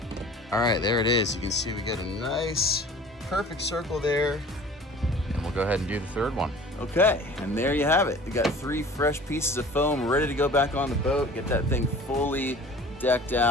All right, there it is. You can see we get a nice, perfect circle there. And we'll go ahead and do the third one. Okay, and there you have it. We got 3 fresh pieces of foam ready to go back on the boat, get that thing fully decked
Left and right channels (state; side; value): normal; both; correlation 0.44